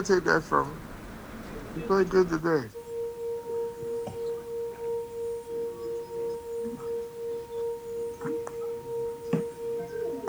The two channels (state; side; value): identical; both; correlation 1.00